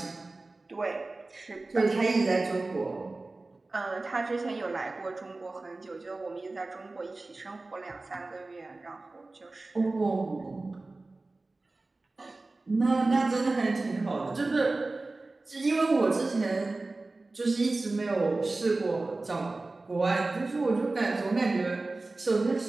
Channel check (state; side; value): quieter; left; 3.2 dB